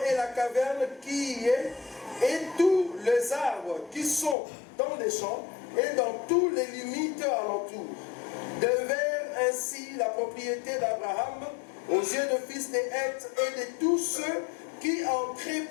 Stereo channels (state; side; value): drops out; right; at 4.4 s